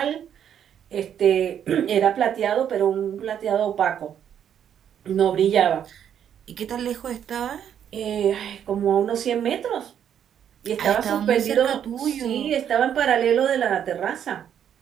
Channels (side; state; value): left; quieter; 9.2 dB